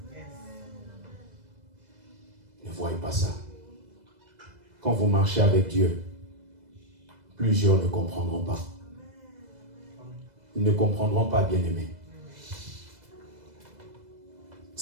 Ne voyez pas ça. Quand vous marchez avec Dieu, plusieurs ne comprendront pas. Ils ne comprendront pas, bien-aimés.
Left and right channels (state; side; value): late; left; 2.0 ms